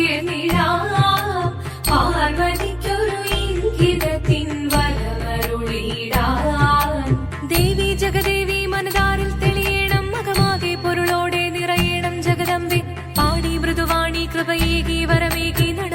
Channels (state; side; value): identical; both; correlation 1.00